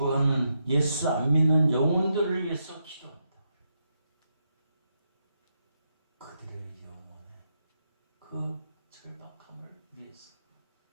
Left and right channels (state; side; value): inverted; both; correlation -0.82